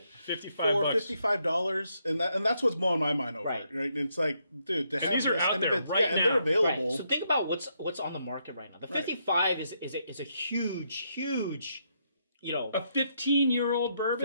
$55 for bucks. $55, and that's what's blowing my mind over. Right. Right? And it's like, dude, to have these are this, out and there if it's, right and now. they're available. Right. So think about what's on the market right now. The 55 is a huge, you know. A 15-year-old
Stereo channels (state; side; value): inverted; both; correlation -0.77